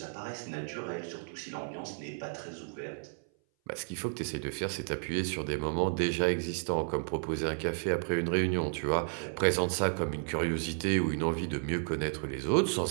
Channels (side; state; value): left; silent; 56 dB below the other